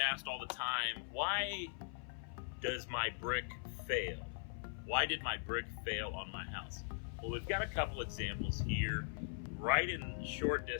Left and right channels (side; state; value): right; silent; 51 dB below the other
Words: all the time, why does my brick fail? Why did my brick fail on my house? Well, we've got a couple examples here right in short